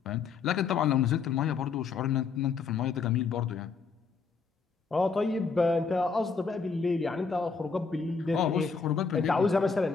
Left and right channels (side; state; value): right; quieter; 5.2 dB